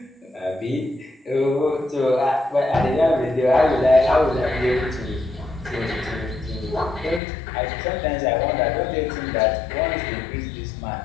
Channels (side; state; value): right; drops out; at 7.2 s